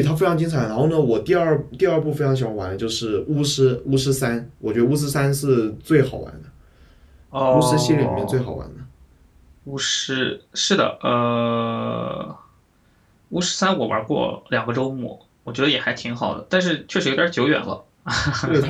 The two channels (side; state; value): both; identical; correlation 1.00